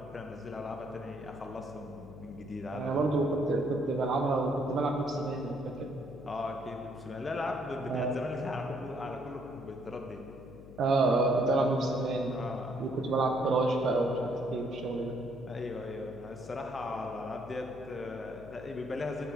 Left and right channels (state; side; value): noise; left; hum, 16 dB below the sound